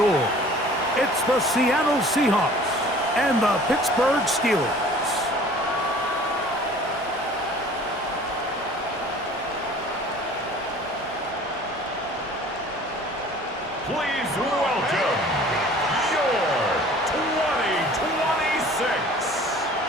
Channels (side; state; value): both; normal; correlation 0.48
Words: It's the Seattle Seahawks and the Pittsburgh Steelers. Please welcome your 2026